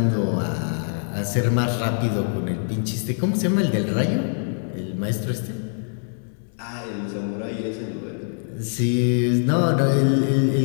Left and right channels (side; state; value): right; silent; digital silence